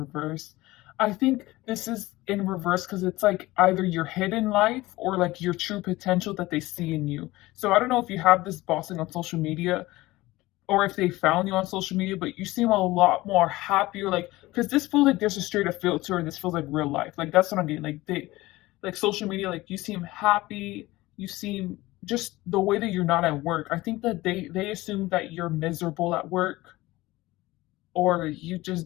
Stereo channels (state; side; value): quieter; right; 19.0 dB